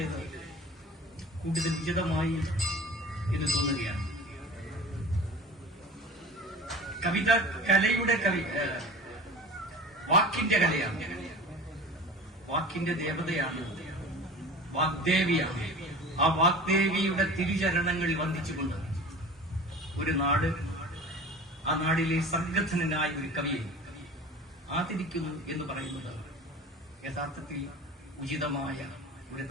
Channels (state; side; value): normal; both; correlation 0.38